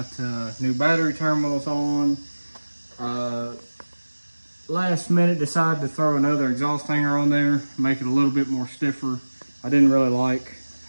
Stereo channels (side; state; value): both; inverted; correlation -1.00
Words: new battery terminals on. Last minute decided to throw another exhaust hanger on there, make it a little bit more stiffer. I didn't really like